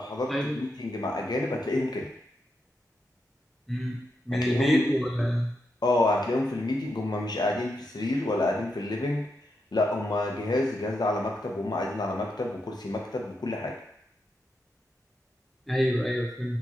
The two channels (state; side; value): normal; both; correlation 0.84